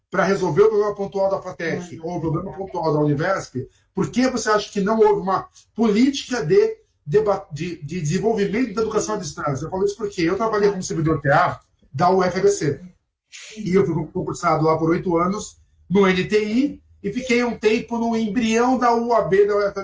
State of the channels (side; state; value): both; identical; correlation 1.00